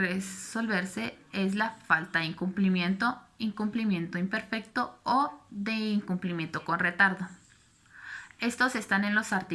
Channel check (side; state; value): both; identical; correlation 1.00